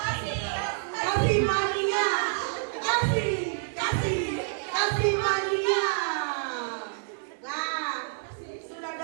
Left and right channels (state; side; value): silent; left; 59 dB below the other